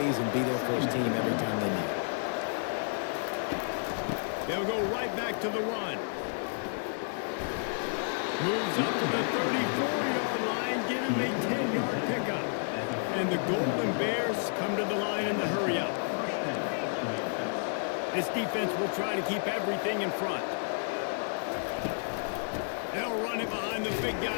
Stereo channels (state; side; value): silent; right; digital silence